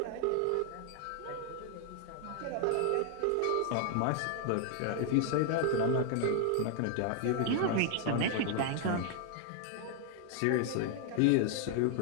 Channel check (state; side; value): different; both; correlation 0.00